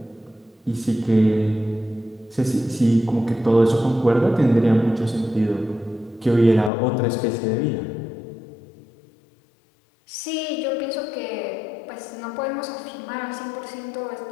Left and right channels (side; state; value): right; drops out; at 6.7 s